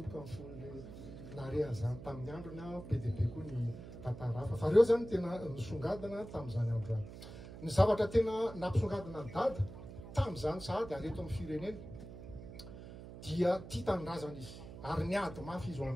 amin'ny fon'le narehan'izany tamin'ny androny be dia be koa ny tantara hafa. Fa reo zany tena nisongadina tamin'izany andro any. Ny zavatra tena nampisongadina ny dada tamin'izany sahady ary eto amin'ny firenena dia tia tanindrazana izy ary niady mafy izy ho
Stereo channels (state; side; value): noise; right; hum, 13 dB below the sound